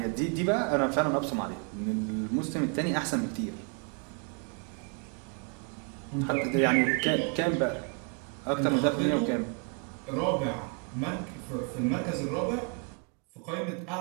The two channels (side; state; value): left; quieter; 37.7 dB